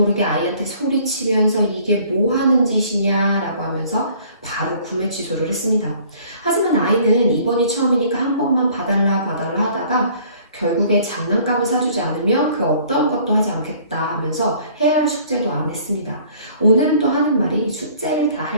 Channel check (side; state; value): both; inverted; correlation -0.55